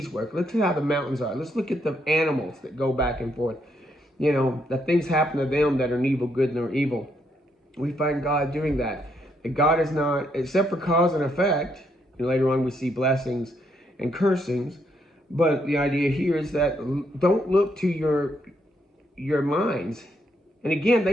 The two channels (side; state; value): both; normal; correlation 0.75